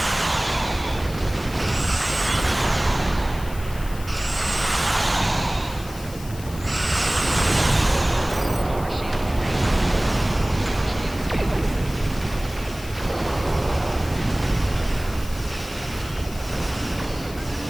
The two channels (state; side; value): noise; left; hiss, 17 dB below the sound